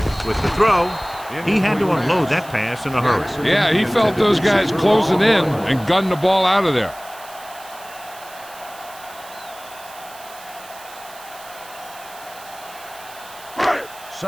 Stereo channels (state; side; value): noise; right; hiss, 19 dB below the sound